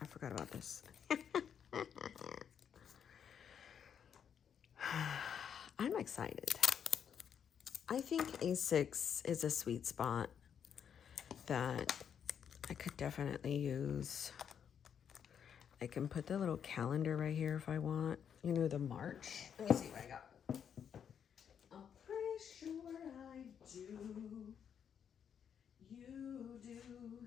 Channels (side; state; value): right; quieter; 8.0 dB